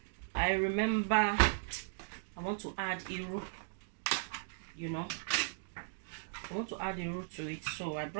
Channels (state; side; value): silent; left; digital silence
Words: I remember I want to add iru, you know, I want to add the root to it, so I